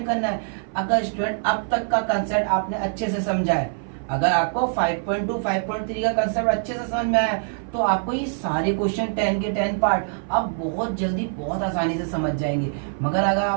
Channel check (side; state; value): left; silent; 59 dB below the other